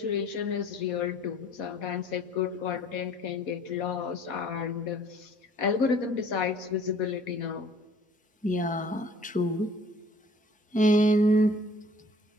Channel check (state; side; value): normal; both; correlation 0.53